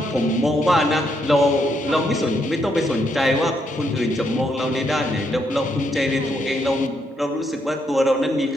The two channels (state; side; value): normal; both; correlation 0.76